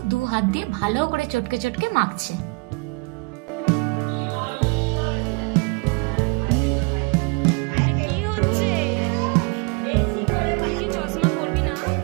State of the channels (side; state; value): left; quieter; 30.5 dB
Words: 2 হাত দিয়ে ভালো করে চটকে চটকে মাখছে।